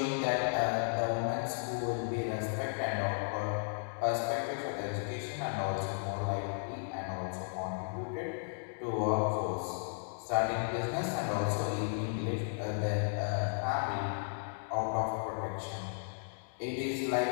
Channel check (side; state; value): right; silent; digital silence